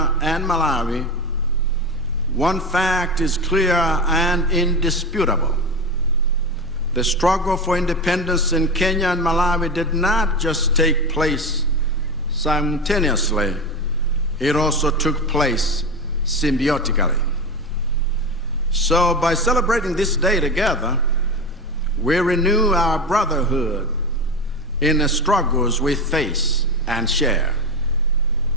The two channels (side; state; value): both; normal; correlation 0.21